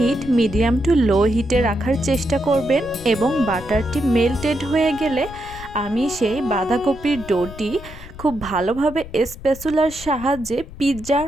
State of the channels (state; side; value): noise; left; rumble, 15 dB below the sound